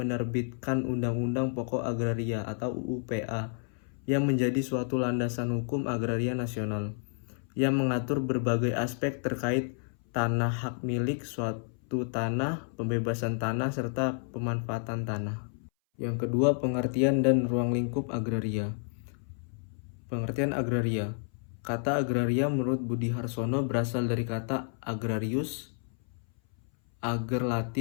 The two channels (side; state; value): right; silent; 58 dB below the other